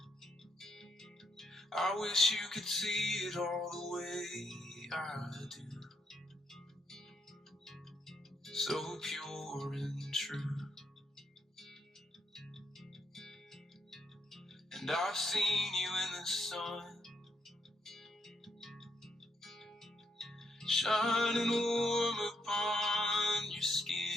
I wish you could see it all the way I do. So pure and true. And I've seen you in the sun, shining warm upon your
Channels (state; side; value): normal; both; correlation 0.77